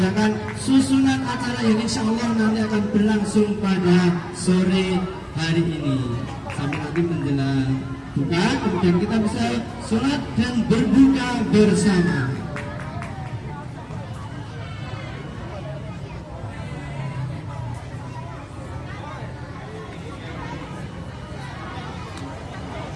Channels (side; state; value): both; identical; correlation 1.00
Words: susunan acara yang insya Allah nanti akan berlangsung pada sore hari ini sampai nanti menjelang buka, kemudian kita bisa sholat dan berbuka bersama.